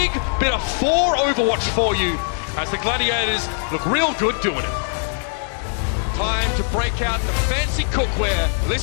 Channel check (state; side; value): silent; right; digital silence